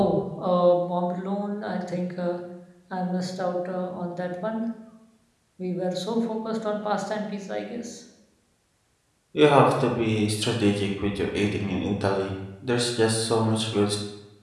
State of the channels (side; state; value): both; identical; correlation 1.00